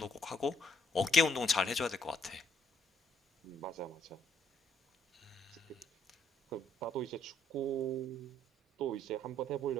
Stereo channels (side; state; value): both; normal; correlation 0.68